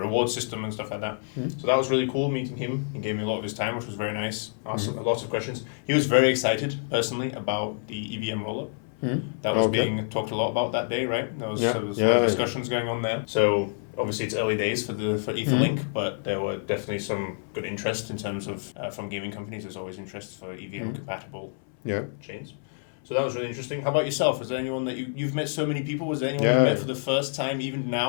reward system and stuff like that. So that was really cool meeting him. He gave me a lot of his time, which was very nice. Asked him lots of questions. He was very excited, personally, about the EVM rollup. That was being talked a lot about that day, right? There was discussions going on there. So obviously it's early days for Etherlink, but there were definitely some good interest in terms of from gaming companies. There's always interest for EVM compatible chains. So that was really interesting. How about yourself? Was there anyone that you've met so many people? Was there anyone you met for the first time, even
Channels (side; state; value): right; silent; 60 dB below the other